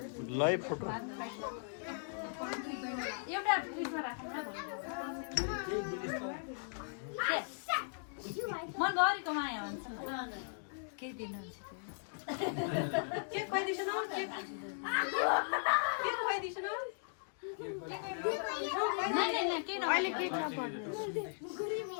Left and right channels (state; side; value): silent; right; digital silence